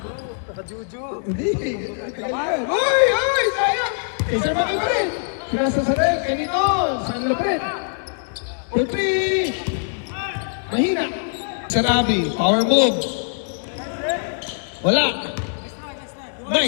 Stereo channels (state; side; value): silent; right; digital silence